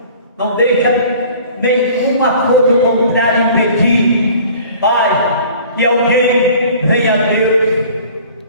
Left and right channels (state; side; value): inverted; both; correlation -0.48